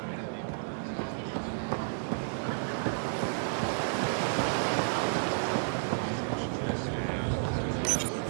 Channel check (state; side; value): silent; left; digital silence